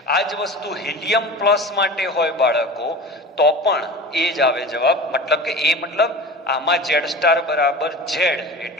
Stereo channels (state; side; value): normal; both; correlation 0.35